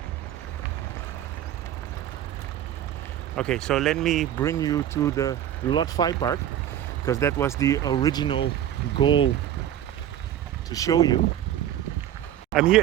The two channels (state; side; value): quieter; left; 11.3 dB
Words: Okay, so let me bring you to the Rot Fai Park, because that was the original goal to show you. I'm